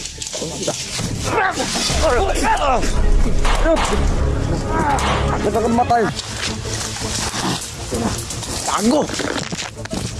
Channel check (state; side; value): identical; both; correlation 1.00